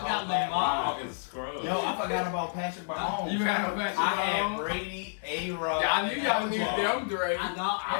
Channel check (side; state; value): right; silent; 58 dB below the other